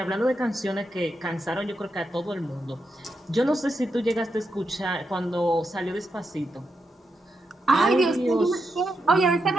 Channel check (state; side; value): normal; both; correlation 0.84